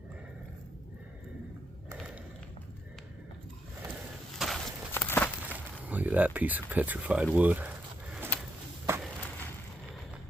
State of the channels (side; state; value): both; normal; correlation 0.79